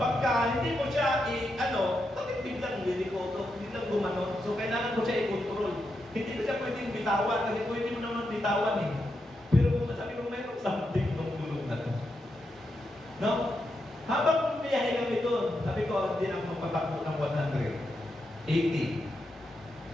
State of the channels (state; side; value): normal; both; correlation 0.84